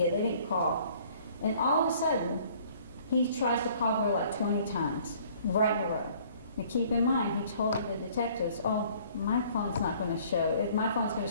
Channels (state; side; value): inverted; both; correlation -0.56